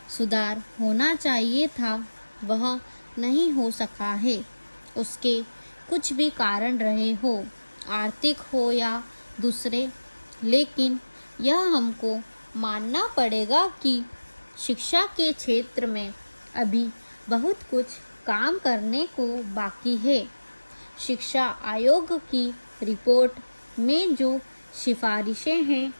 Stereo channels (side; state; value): both; inverted; correlation -1.00